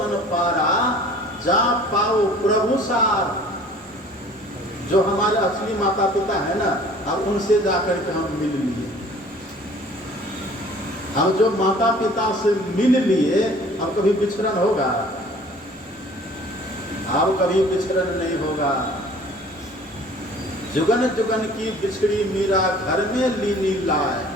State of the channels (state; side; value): normal; both; correlation 0.50